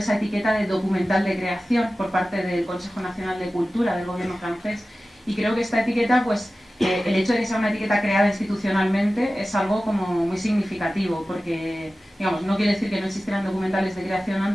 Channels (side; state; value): both; normal; correlation 0.96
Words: etiqueta de documental de creación por parte del Consejo Nacional de Cultura del gobierno francés, y creo que esta etiqueta, pues el hecho de que sea una etiqueta creada institucionalmente es algo como muy significativo, porque digamos, no quiere decir que no existieran documentales de creación